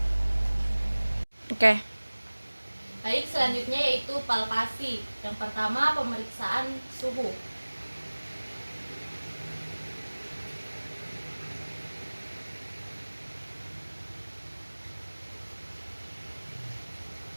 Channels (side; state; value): both; inverted; correlation -1.00